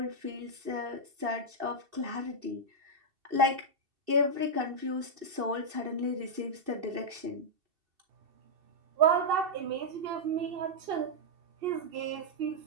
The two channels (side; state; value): left; late; 2.7 ms